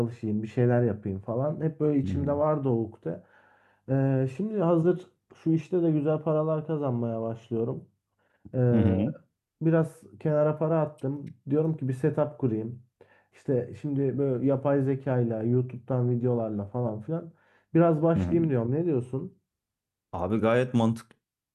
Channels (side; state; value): both; identical; correlation 1.00